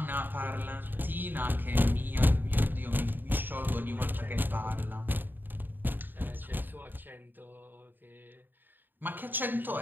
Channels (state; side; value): late; left; 0.092 ms